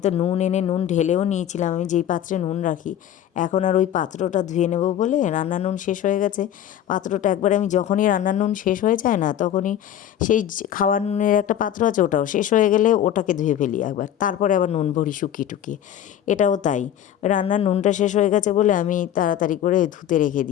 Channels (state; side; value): quieter; right; 10.7 dB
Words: তো নুন এনে নুন ঢেলেও নিয়েছিলাম, আমি যেই পাত্রে নুন রাখি। এখন আর ওই পাত্রটা ধুয়ে নেব বলে, রান্নার নুন শেষ হয়ে গেছে। পাত্রটা একবার আমি যখনই রান্নার নুন শেষ হয়ে যায় না, তখনই সেই খাওয়ার নুনের একটা পাত্র আছে, ওটাও শেষ হয়ে গেলে ওটাকে ধুয়ে ফেলি একবার, তারপরে আবার নুন ভরি শুকিয়ে টুকিয়ে। এটাও তাই, রান্নার নুনটা শেষ হয়ে গেছে বলে আমি তাড়াতাড়ি করে ধুতে রেখে